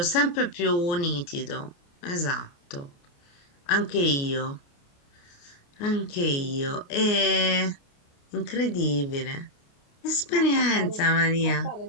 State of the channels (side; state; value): right; late; 29 ms